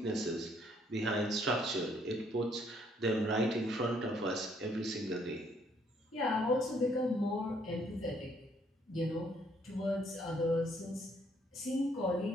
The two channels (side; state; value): both; normal; correlation 0.67